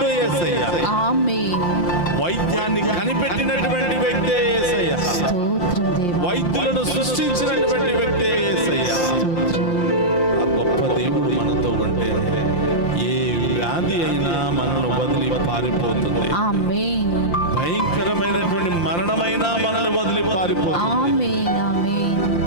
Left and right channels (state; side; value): late; right; 5.7 ms